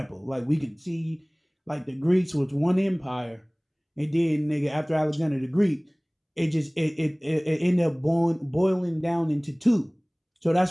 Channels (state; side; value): identical; both; correlation 1.00